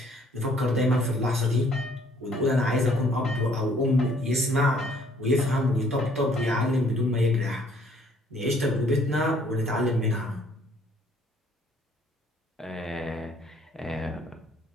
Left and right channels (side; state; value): both; normal; correlation 0.61